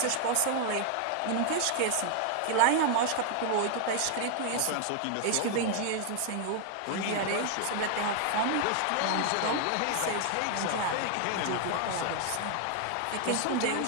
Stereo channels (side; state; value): both; different; correlation 0.00